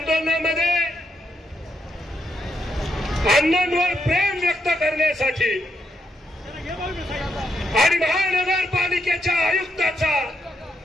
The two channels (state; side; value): normal; both; correlation 0.79